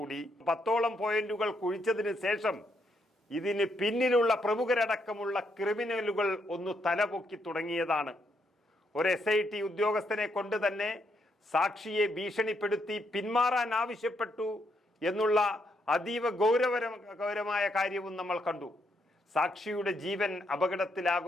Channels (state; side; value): normal; both; correlation 0.77